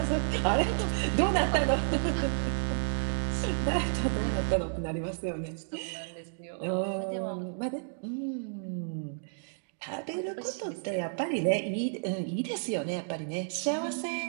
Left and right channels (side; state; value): left; silent; digital silence